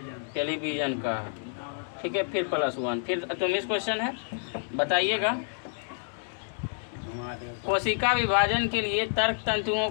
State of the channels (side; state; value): right; silent; digital silence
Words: टेलीविजन का। ठीक है, फिर +1। फिर 24 क्वेश्चन है, बताइएगा कोशिका विभाजन के लिए तर्क तंतुओं